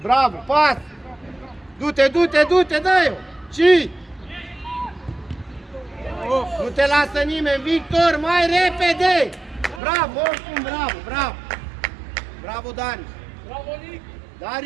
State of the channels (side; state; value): left; drops out; at 9.8 s